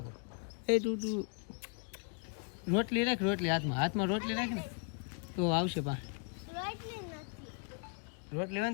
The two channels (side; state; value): right; quieter; 38.0 dB